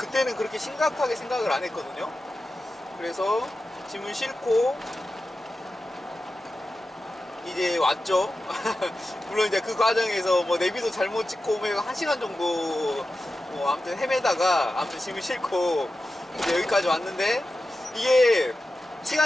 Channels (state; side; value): normal; both; correlation 0.92